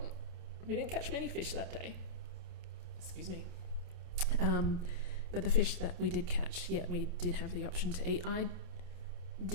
We didn't catch many fish that day. Excuse me. But the fish that we did catch, we did have the option to eat. I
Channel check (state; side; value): late; left; 28 ms